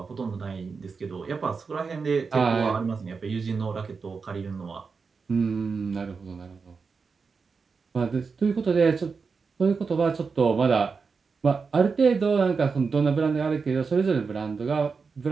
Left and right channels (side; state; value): left; quieter; 5.0 dB